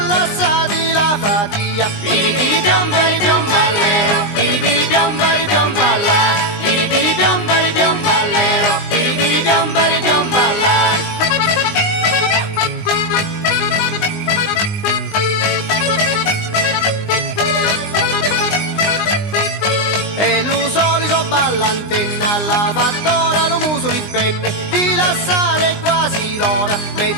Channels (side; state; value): right; late; 19 ms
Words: lasciati la fatia. Piripiri piombari piomballero, piripiri piombari piomballa, piripiri piombari piomballero, piripiri piombari piomballa. E lo solito ballantenna, la fattora lo muso li penne, di lasciare quasi l'ora,